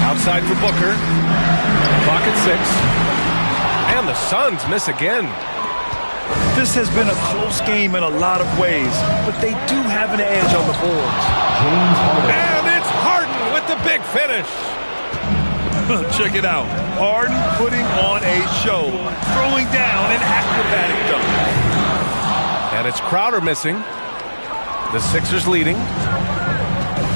Outside for Booker. Clock at 6. And the Suns miss again. This has been a close game in a lot of ways, but they do have an edge on the boards. And it's Harden with the big finish. Check it out. Harden putting on a show, throwing down an acrobatic dunk. And it's Crowder missing. The Sixers leading.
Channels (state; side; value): inverted; both; correlation -1.00